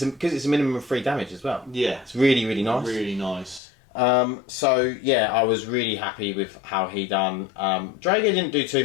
it's a minimum of 3 damage as well. Yeah, it's really, really nice. Really nice. So yeah, I was really happy with how he done. Drago didn't do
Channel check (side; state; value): right; drops out; at 3.6 s